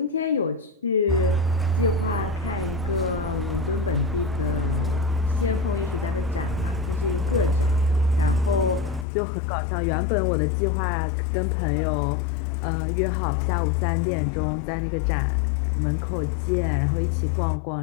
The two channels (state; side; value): drops out; right; at 9.1 s